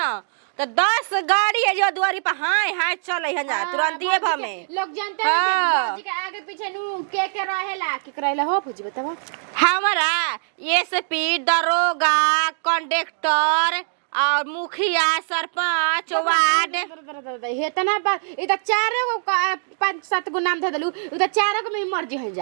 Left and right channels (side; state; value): left; silent; digital silence